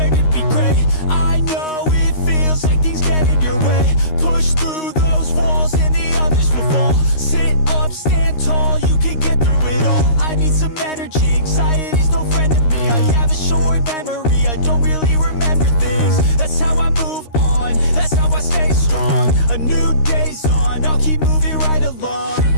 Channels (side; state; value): right; late; 13 ms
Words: to be great. I know it feels like things get in your way. Push through those walls and the others will fall. Sit up, stand tall, you can get through it all. I need some energy, anxiety's no friend to me. I have a short memory, I don't really remember things. That's how I move on, that's how I stay strong. A new day's on, I'll keep moving right along.